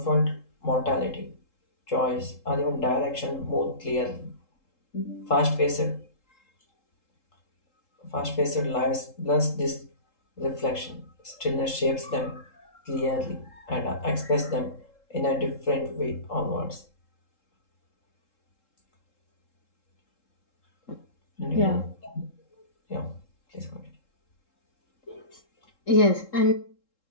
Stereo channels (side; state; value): right; late; 3.7 ms